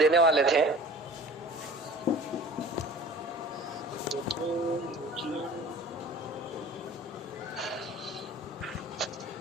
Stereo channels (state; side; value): normal; both; correlation 0.45